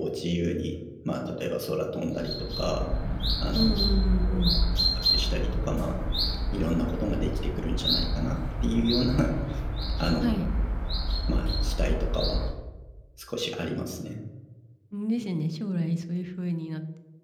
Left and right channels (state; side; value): identical; both; correlation 1.00